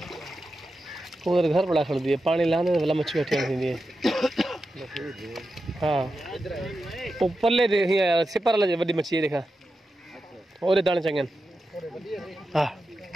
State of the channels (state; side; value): normal; both; correlation 0.90